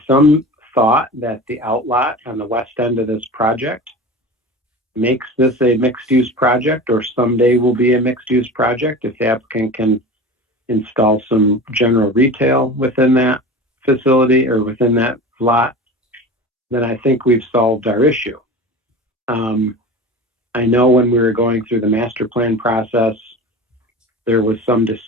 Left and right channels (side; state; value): both; normal; correlation 0.33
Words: some thought that the outlot on the west end of this project makes this a mixed-use project, or someday will be a mixed-use project, if the applicant can install some general retail within that facility or within that lot, then I think we've solved our issue. I know when we were going through the master plan process, there was some